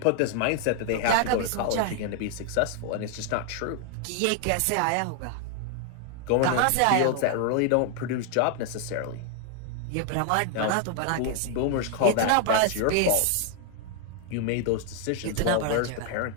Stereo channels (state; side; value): different; both; correlation 0.00